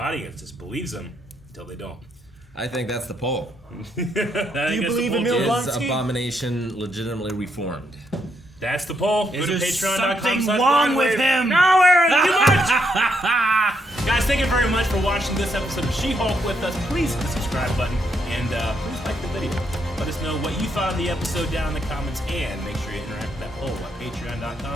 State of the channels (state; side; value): normal; both; correlation 0.76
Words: just believes him until they don't. I think that's the poll. Do you believe Emil Is Abomination legitimately reformed? That's the poll. Go to patreon.com. Something wrong with him? No, Aaron, too much! Guys, thank you very much for watching this episode of She-Hulk with us. Please hit the subscribe button and please like the video. Let us know what you thought of the episode down in the comments, and make sure you interact with that poll at